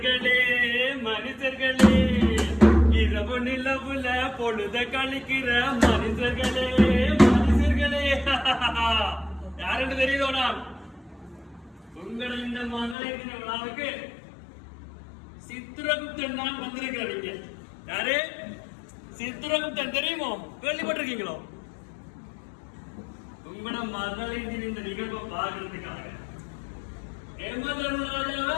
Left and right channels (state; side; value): drops out; right; at 13.0 s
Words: மனிதர்களே, இரவு நிலவுல பொழுத கழிக்கிற மனிதர்களே மனிதர்களே. யாருன்னு தெரியுதோடா? உங்களை இந்த மகளிர் விழாவுக்கு சித்திரகுப்தன் தான் வந்திருக்கிறீங்க. யாரு? சித்திரகுப்தன் தெரியுமோ? கேள்விப்பட்டிருக்கீங்களோ? உங்களோட மகளிர் இந்த நிகழ்வை பார்க்கறதுக்காக ஏமாதராஜாவை